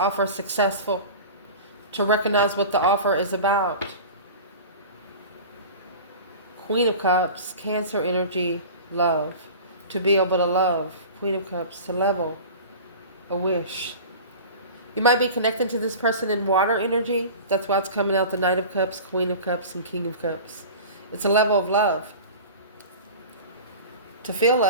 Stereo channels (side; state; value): both; inverted; correlation -0.36